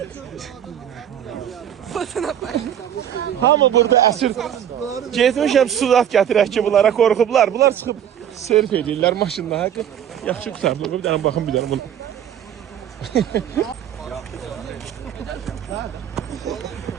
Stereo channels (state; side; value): quieter; left; 9.8 dB